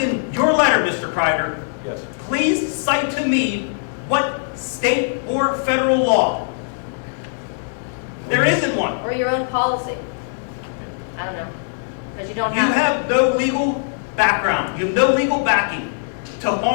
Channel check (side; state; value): right; silent; digital silence